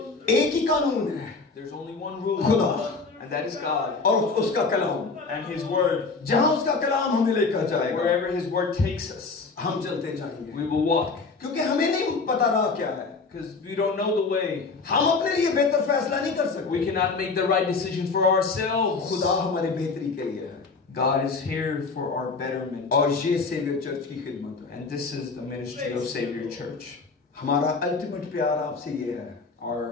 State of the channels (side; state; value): right; quieter; 4.3 dB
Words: एक ही कानून है, There's only one rule, खुदा and that is God और उसका कलाम. and His Word. जहां उसका कलाम हमें लेकर जाएगा, Wherever His Word takes us, हम चलते जाएंगे. we will walk. क्योंकि हमें नहीं पता रहा क्या है. Because we don't know the way. हम अपने लिए बेहतर फैसला नहीं कर सकते. We cannot make the right decision for ourselves. खुदा हमारी बेहतरी के लिए है. God is here for our betterment. और ये सेवियर चर्च की खिदमत है. And this is the ministry of Savior Church. हमारा अल्टीमेट प्यार आपसे ये है